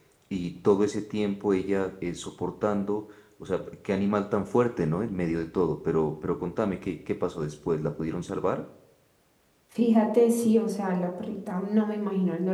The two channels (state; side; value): identical; both; correlation 1.00